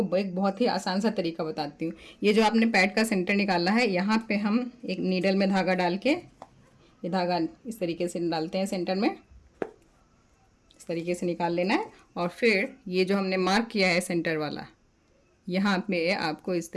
एक बहुत ही आसान सा तरीका बताती हूँ। ये जो आपने पैड का सेंटर निकाला है, यहाँ पे हम एक नीडल में धागा डाल के, ये धागा इस तरीके से डालते हैं सेंटर में, इस तरीके से निकाल लेना है। और फिर ये जो हमने मार्क किया है सेंटर वाला, यहाँ पे आपको इस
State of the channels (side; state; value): both; identical; correlation 1.00